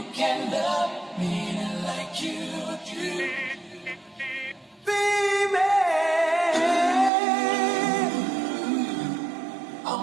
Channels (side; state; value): left; drops out; at 7.1 s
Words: can love me like you do. Baby,